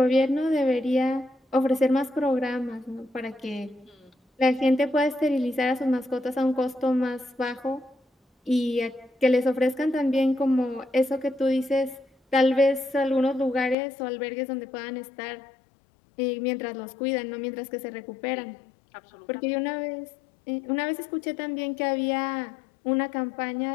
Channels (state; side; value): drops out; right; at 13.8 s